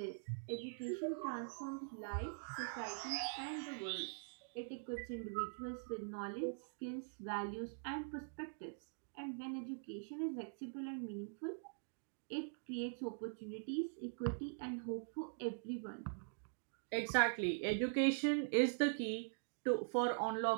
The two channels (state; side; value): silent; left; digital silence